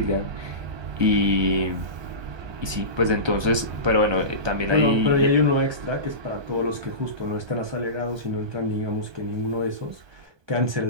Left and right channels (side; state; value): left; late; 1.2 ms